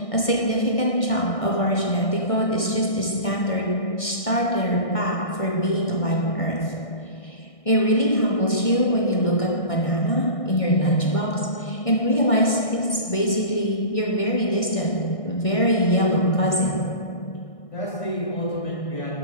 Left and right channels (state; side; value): late; right; 1.6 ms